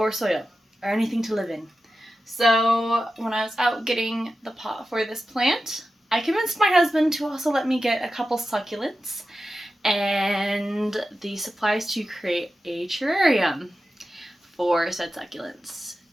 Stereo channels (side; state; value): both; normal; correlation 0.92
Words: soil or anything to live in. So when I was out getting the pot for this plant, I convinced my husband to also let me get a couple succulents and the supplies to create a terrarium for said succulents.